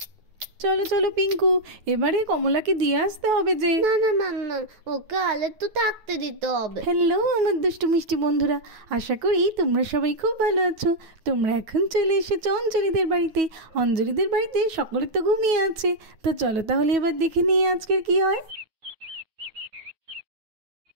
চলো চলো পিঙ্কু, এবারে কমলাকে দিয়ে আসতে হবে যে। না না মাম্মা, ওকে আলে তো থাকতে দিতে হবে। হ্যালো আমার দুষ্টু মিষ্টি বন্ধুরা, আশা করি তোমরা সবাই খুব ভালো আছো। তোমরা এখন চলে এসেছো অঞ্জলিদের বাড়িতে। অঞ্জলিদের বাড়িতে সকলে তো ঘুমিয়ে আছে। তো চলো তাহলে এবার দেখে নিই আজকের কি হয়।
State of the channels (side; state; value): left; late; 9.3 ms